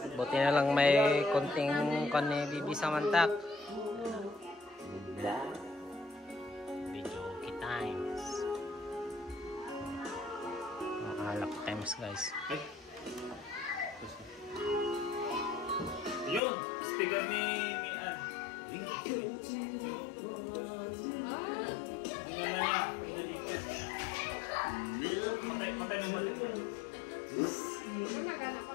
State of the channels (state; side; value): drops out; right; at 16.4 s